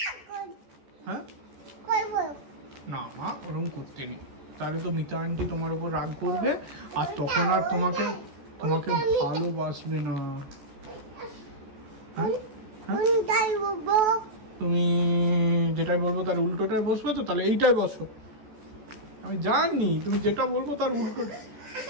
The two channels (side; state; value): left; late; 14 ms